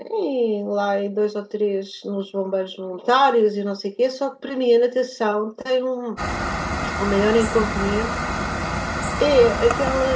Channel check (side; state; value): both; identical; correlation 1.00